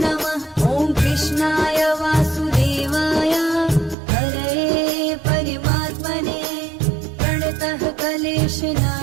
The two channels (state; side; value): drops out; left; at 4.0 s